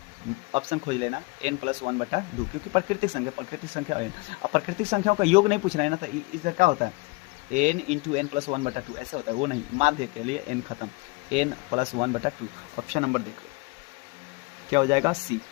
ऑप्शन खोज लेना n प्लस 1/2, क्योंकि प्राकृतिक संख्या n। अब प्राकृतिक संख्याओं का योग नहीं पूछ रहे हैं ना, तो इधर क्या होता है n इंटू एन प्लस 1/2 ऐसा होता है, वो नहीं। माध्य के लिए n खत्म, n प्लस 1/2। ऑप्शन नंबर देख लो क्या हो जाएगा, सी।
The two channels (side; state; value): right; quieter; 25.9 dB